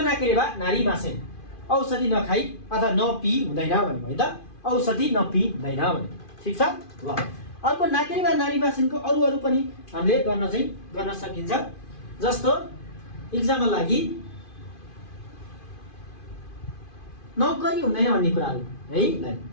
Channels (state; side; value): late; right; 2.5 ms